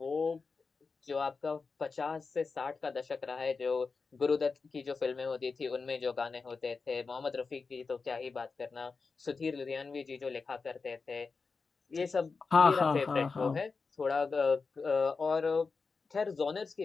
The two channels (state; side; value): quieter; right; 4.6 dB